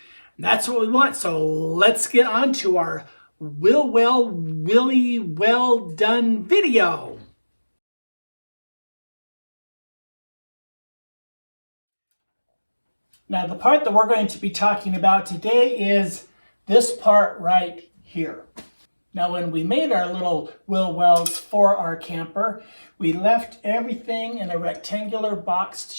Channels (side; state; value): both; inverted; correlation -1.00